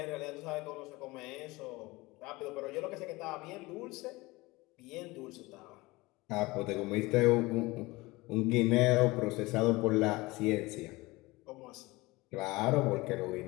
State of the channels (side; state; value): right; quieter; 21.8 dB